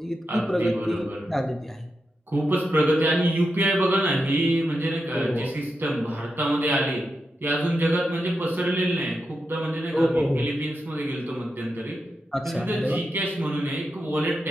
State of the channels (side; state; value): both; normal; correlation 0.87